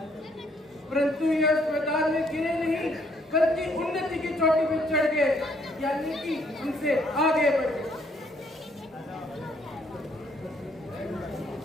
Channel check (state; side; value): normal; both; correlation 0.67